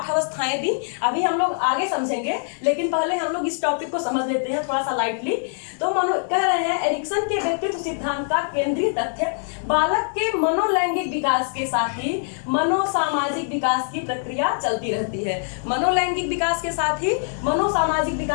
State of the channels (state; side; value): silent; right; digital silence